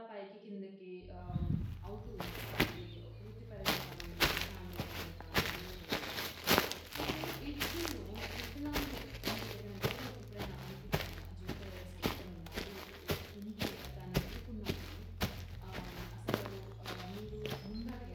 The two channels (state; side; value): identical; both; correlation 1.00